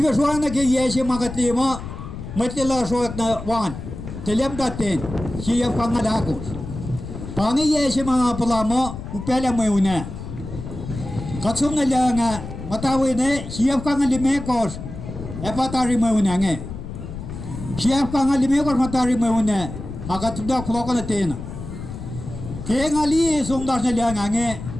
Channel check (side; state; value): left; noise; rumble, 9 dB below the sound